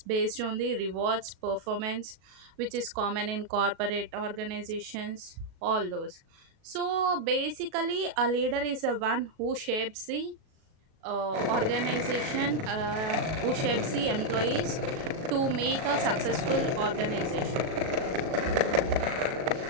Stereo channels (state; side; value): late; left; 37 ms